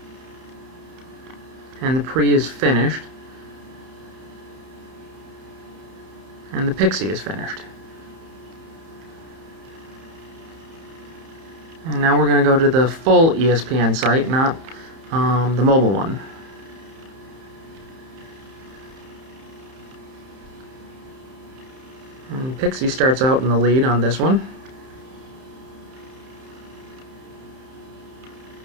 And the pre is finished, and the Pixi is finished. And now we're going to go to the full ESPN site, not the mobile one. And Pixi starts out in the lead on this one.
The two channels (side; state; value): left; late; 30 ms